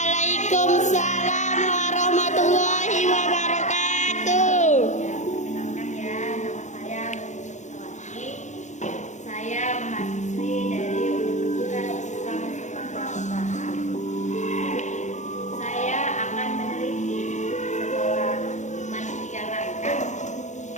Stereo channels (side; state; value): right; late; 0.35 ms